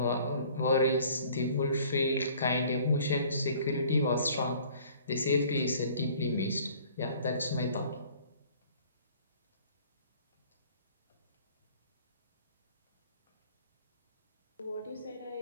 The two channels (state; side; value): inverted; both; correlation -0.53